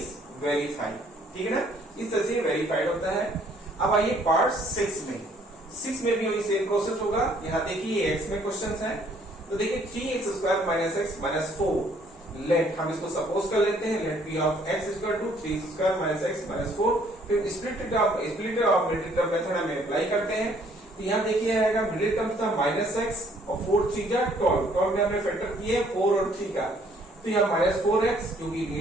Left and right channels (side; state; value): both; normal; correlation 0.63